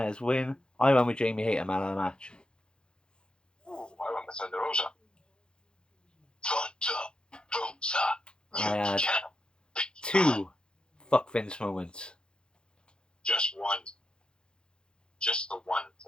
win. I went with Jamie Hater man of the match. Ooh, I went with Thunder Rosa. I had 2 fuck Vince moments. Just one. Just the one.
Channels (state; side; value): late; right; 0.049 ms